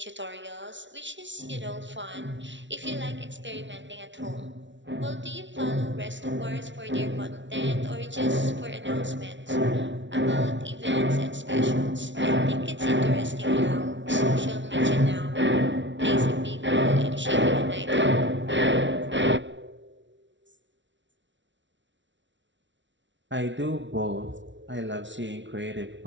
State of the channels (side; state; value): left; late; 0.54 ms